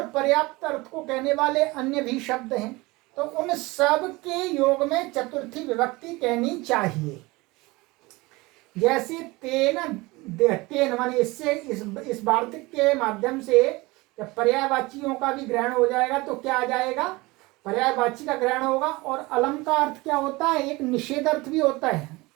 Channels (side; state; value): left; quieter; 22.5 dB